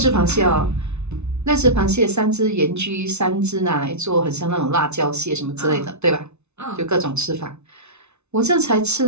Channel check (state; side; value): late; left; 0.81 ms